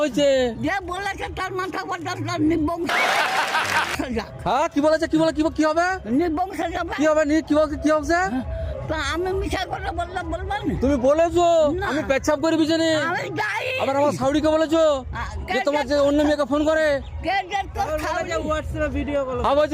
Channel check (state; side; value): identical; both; correlation 1.00